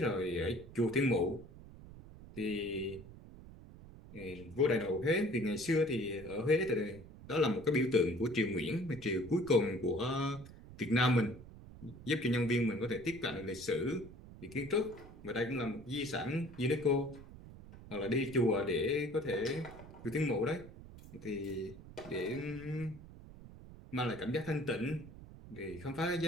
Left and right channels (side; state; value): right; noise; rumble, 17 dB below the sound